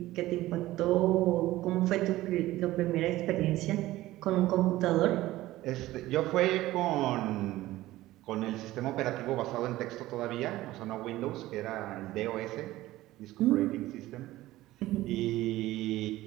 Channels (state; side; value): quieter; left; 16.6 dB